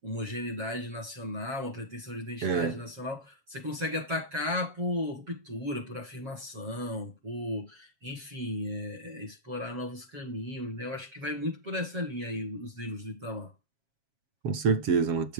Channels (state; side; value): late; left; 7.4 ms